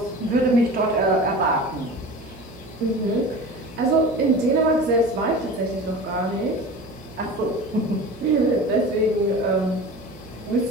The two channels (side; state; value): right; noise; hum, 22 dB below the sound